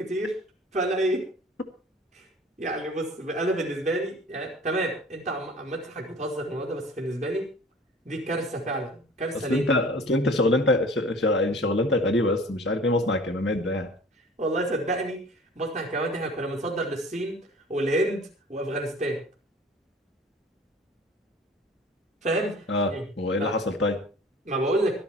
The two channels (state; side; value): normal; both; correlation 0.46